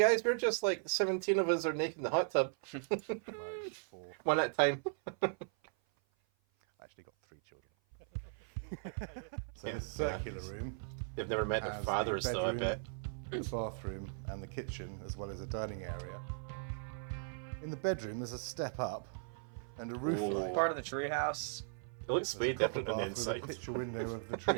we're just like 17 of us are naked in the hot tub. Like 4. One at a time. I actually got 3 children. So Yeah. this circular room They've never met their has the fathers though, I bedroom, bet. the bathroom and the kitchen, as well as a dining area. In the bedroom, there's a step up and a roof Ooh. light. Part of the treehouse. It looks There's way a copper different on the bath with inside. a picture window of the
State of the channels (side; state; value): left; silent; 53 dB below the other